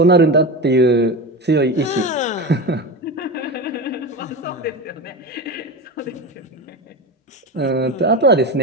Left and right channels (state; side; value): normal; both; correlation 0.24